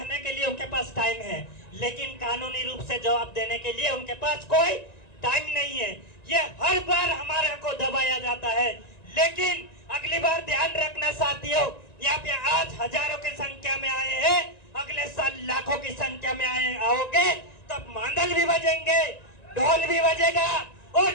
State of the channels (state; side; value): late; right; 1.9 ms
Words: के लिए उनके पास टाइम है, लेकिन कानूनी रूप से जवाब देने के लिए उनके पास कोई टाइम नहीं है। ये हर बार हमारे को दबाया जाता है। लेकिन अगली बार ध्यान रखना साथियों, यहाँ पे आज हजारों की संख्या में आए हैं, अगले साल लाखों की संख्या में आओगे तब मांदल भी बजेंगे, ढोल भी बजेगा और